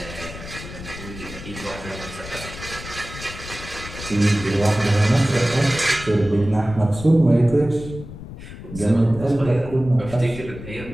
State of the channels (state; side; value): noise; left; rumble, 12 dB below the sound